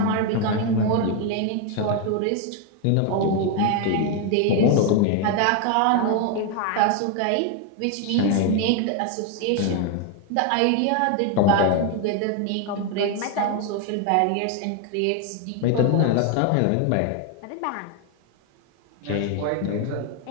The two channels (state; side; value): different; both; correlation 0.01